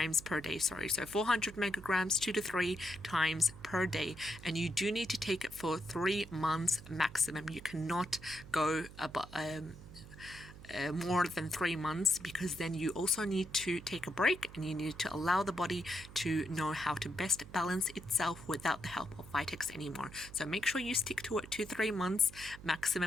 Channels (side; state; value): right; noise; hum, 16 dB below the sound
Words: per day. So 400 megagrams 2 to 3 times per day, and you do need to take it for 3 months maximum. You cannot go about more than 3 months, because then you also need to take a break and you need to allow the body to know how to best balance itself without the help of Vitex anymore. So make sure you stick to it 2 to 3 months